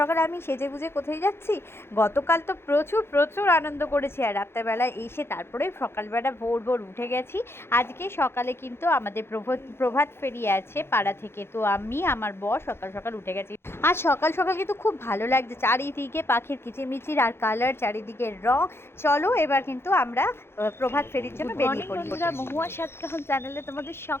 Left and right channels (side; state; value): right; late; 0.12 ms